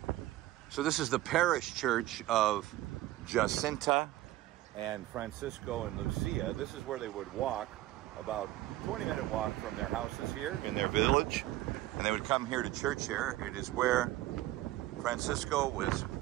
So this is the parish church of Jacinta and Francisco and Lucia. This is where they would walk, about 20-minute walk from their houses here in their village. And they would come here to church here. It is where Francisco was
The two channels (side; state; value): left; quieter; 16.0 dB